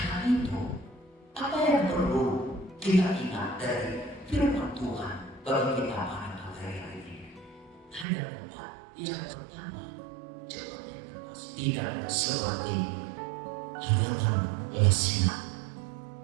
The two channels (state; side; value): drops out; left; at 8.1 s